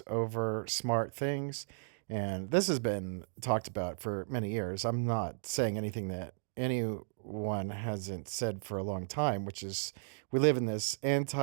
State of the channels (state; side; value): silent; left; digital silence